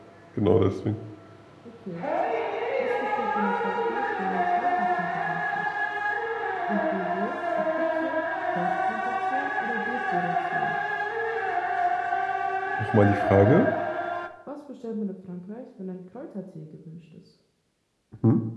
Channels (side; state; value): both; identical; correlation 1.00